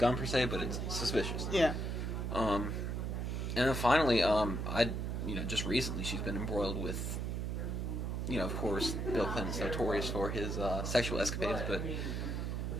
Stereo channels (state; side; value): noise; right; hum, 2 dB below the sound